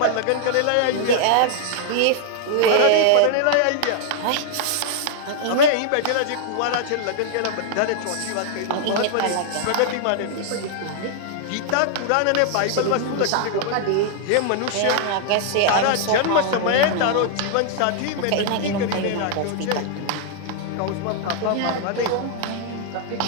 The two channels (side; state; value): both; different; correlation 0.00